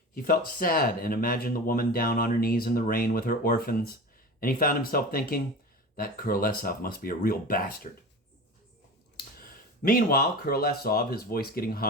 he felt sad and imagined the woman down on her knees in the rain with her orphans, and he found himself thinking, that Kurolesov must be a real bastard. Meanwhile, Kurolesov, his voice getting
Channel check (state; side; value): normal; both; correlation 0.32